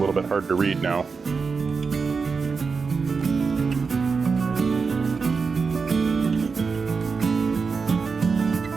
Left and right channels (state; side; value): quieter; left; 5.0 dB